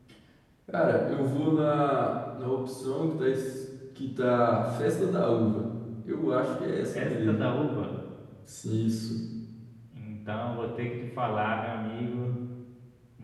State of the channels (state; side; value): identical; both; correlation 1.00